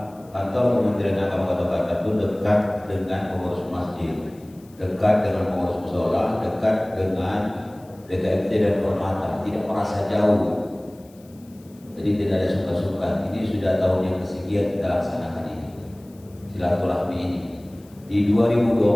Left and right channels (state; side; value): noise; left; hiss, 29 dB below the sound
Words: kantor Kementerian Agama Kota Batam itu dekat dengan pengurus masjid, dekat dengan pengurus mushola, dekat dengan DKMT dan Hormata, tidak merasa jauh. Jadi tidak ada suka-suka. Ini sudah tahun yang kesekian kita laksanakan ini, silaturahmi ini. Di